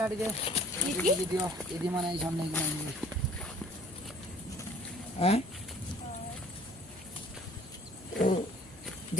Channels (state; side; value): normal; both; correlation 0.53